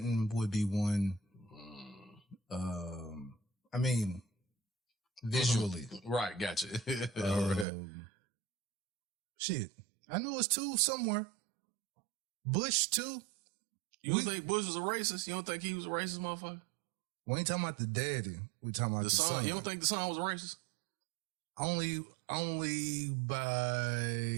would be one. I mean, visually. Right, gotcha. Shit. I know it's 2 somewhere. Bush, 2. You don't think Bush was a racist? You don't think he was a racist motherfucker? We ain't talking about the daddy. We talking about the son. You don't think the son was a racist? Only by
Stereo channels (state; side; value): drops out; left; at 7.7 s